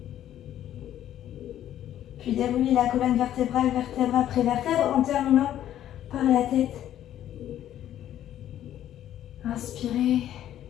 Puis déroulez la colonne vertébrale, vertèbre après vertèbre, en terminant par la tête. Inspirez.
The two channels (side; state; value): right; quieter; 11.7 dB